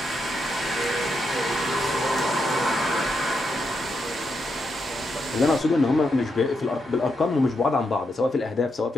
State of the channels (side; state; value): both; normal; correlation 0.83